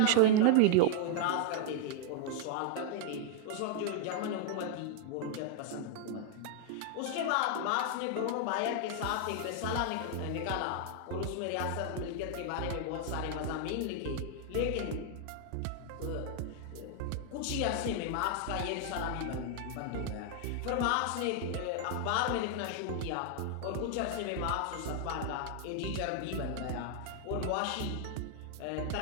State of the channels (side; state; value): both; different; correlation 0.00